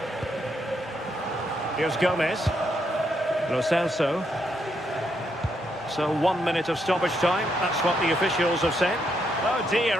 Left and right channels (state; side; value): normal; both; correlation 0.77